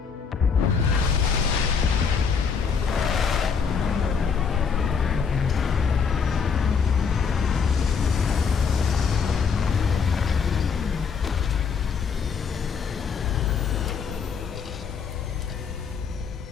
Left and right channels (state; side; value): quieter; right; 6.0 dB